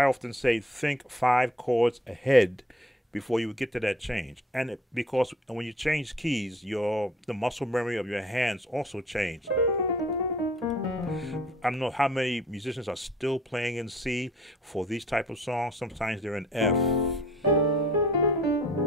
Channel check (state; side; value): normal; both; correlation 0.54